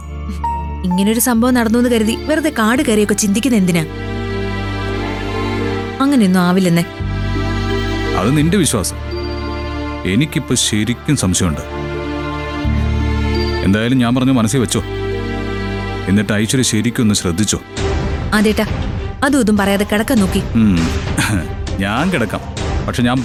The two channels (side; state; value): both; identical; correlation 1.00